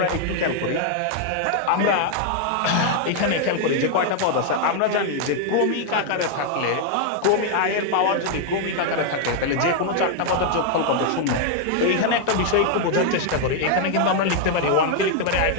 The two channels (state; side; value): different; both; correlation 0.00